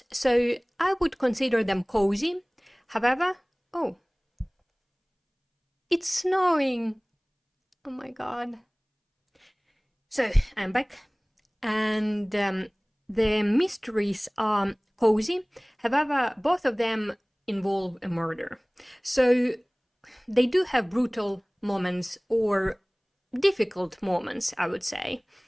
So I would consider them cozy. However, oh, it's snowing. Oh my god. So I'm back, and the mysteries are cozy. However, both of them involve a murder. So they do have brutal moments or difficult moments, I would say,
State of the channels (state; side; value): identical; both; correlation 1.00